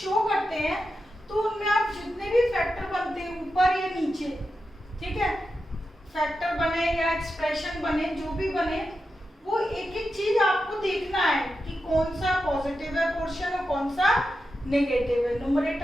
करते हैं तो उनमें आप जितने भी फैक्टर बनते हैं ऊपर या नीचे, ठीक है, फैक्टर बने या एक्सप्रेशन बने, जो भी बने, वो एक एक चीज आपको देखना है कि कौन सा पॉजिटिव है पोर्शन और कौन सा नेगेटिव है,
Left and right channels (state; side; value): normal; both; correlation 0.89